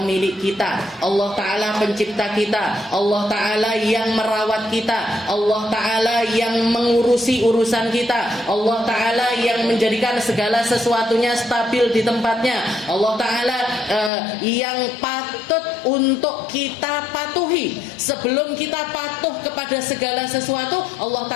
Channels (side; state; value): right; drops out; at 14.1 s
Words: kita, Allah Ta'ala pencipta kita, Allah Ta'ala yang merawat kita, Allah Ta'ala yang mengurusi urusan kita, Allah Ta'ala yang menjadikan segala sesuatunya stabil di tempatnya, Allah Ta'ala yang patut untuk kita patuhi. Sebelum kita patuh kepada segala sesuatu, Allah